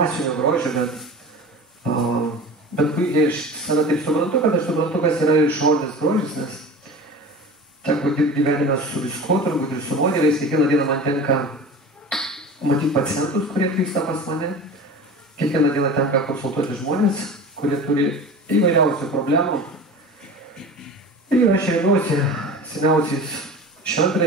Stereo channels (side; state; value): both; normal; correlation 0.35